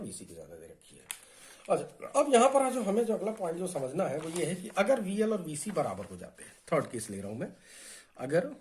की ज्यादा दे रखी है। अच्छा, अब यहां पर जो हमें जो अगला पॉइंट जो समझना है वो ये है कि अगर वीएल और वीसी बराबर हो जाते हैं, थर्ड केस ले रहा हूं मैं, अगर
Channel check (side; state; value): both; identical; correlation 1.00